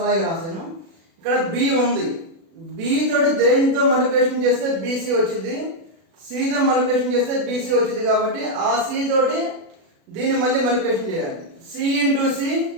అలాగే రాశాను. ఇక్కడ B ఉంది, B తోటి దేనితో మల్టిప్లికేషన్ చేస్తే BC వచ్చింది, C తో మల్టిప్లికేషన్ చేస్తే BC వచ్చింది కాబట్టి ఆ C తోటి దీన్ని మళ్ళీ మల్టిప్లికేషన్ చేయాలి. C into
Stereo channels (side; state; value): left; late; 36 ms